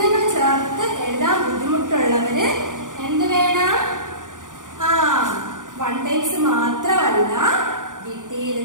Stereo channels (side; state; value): left; late; 0.88 ms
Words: ചേർത്ത് എഴുതാൻ ബുദ്ധിമുട്ടുള്ളവര് എന്ത് വേണം? 1 ടൈംസ് മാത്രമല്ല,